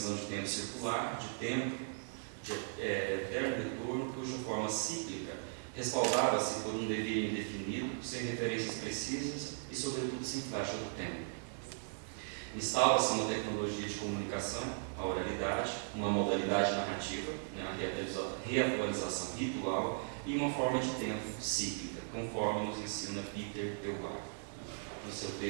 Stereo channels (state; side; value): silent; left; digital silence